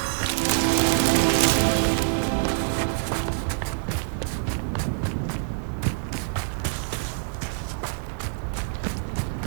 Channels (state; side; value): silent; left; digital silence